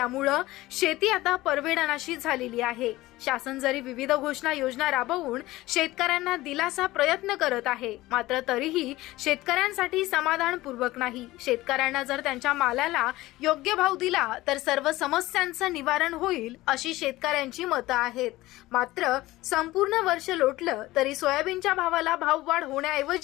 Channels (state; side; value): quieter; right; 18.0 dB